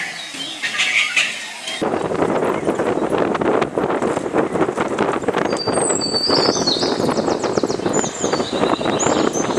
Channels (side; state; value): both; identical; correlation 1.00